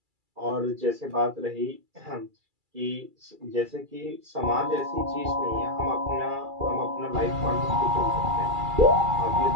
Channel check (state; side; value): late; left; 2.3 ms